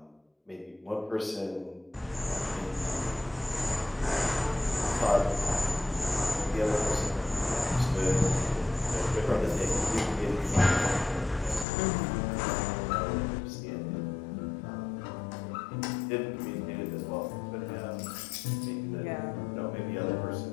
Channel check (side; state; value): right; drops out; at 11.7 s